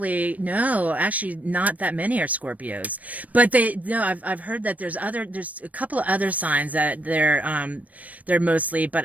not that many are Scorpios, but I've heard that there's a couple of other signs that they're mostly,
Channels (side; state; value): left; late; 0.071 ms